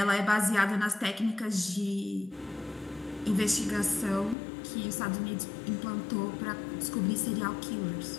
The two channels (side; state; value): right; drops out; at 4.4 s